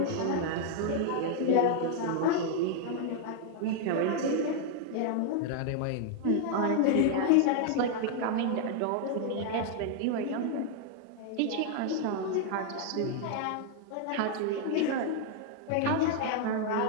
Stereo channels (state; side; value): different; both; correlation 0.00